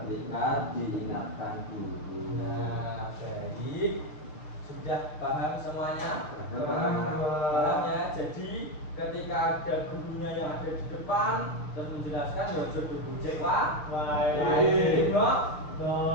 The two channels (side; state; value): right; late; 6.3 ms